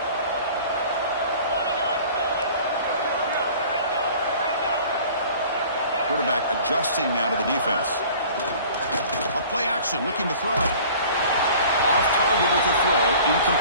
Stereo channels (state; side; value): inverted; both; correlation -0.47